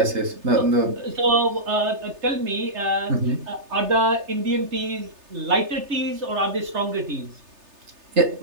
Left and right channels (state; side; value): late; left; 3.3 ms